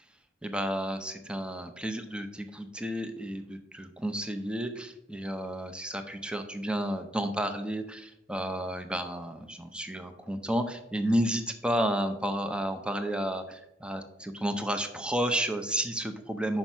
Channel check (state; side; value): normal; both; correlation 0.74